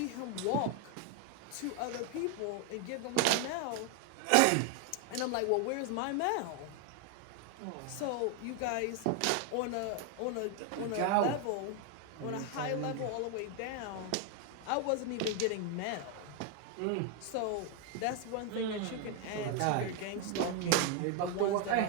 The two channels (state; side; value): different; both; correlation 0.01